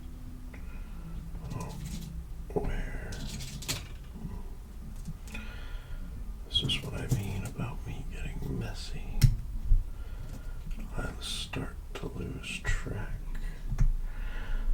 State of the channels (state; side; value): identical; both; correlation 1.00